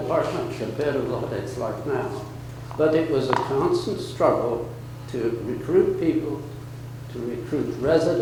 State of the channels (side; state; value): both; identical; correlation 1.00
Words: compared to what it's like now. But it was a constant struggle to recruit people, to recruit